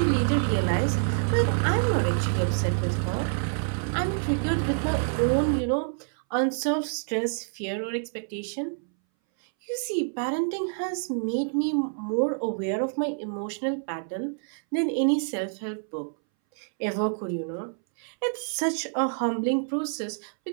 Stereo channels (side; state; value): left; silent; 60 dB below the other